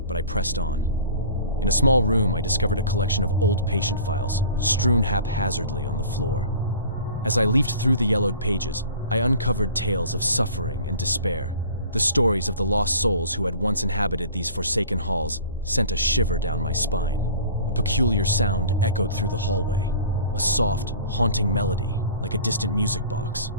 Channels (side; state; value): both; inverted; correlation -0.44